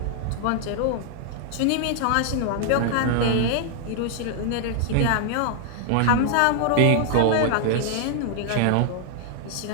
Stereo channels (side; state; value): both; different; correlation 0.00